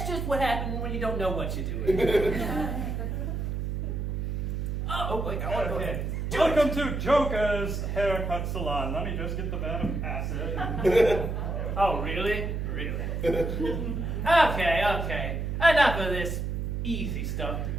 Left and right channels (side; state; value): right; noise; hum, 2 dB below the sound